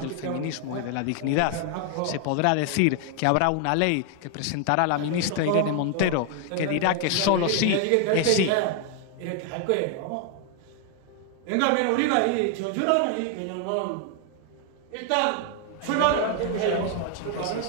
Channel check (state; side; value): different; both; correlation 0.00